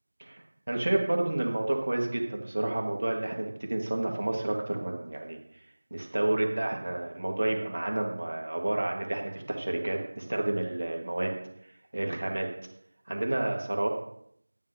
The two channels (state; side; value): inverted; both; correlation -1.00